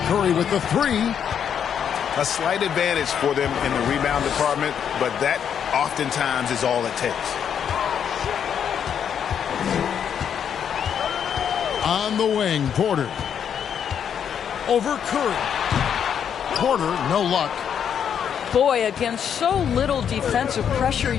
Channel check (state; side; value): quieter; right; 8.3 dB